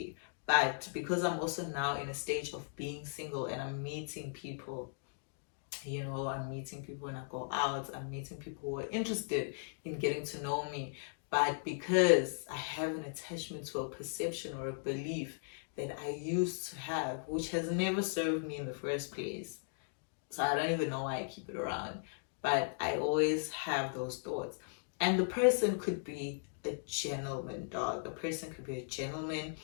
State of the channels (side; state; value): right; silent; digital silence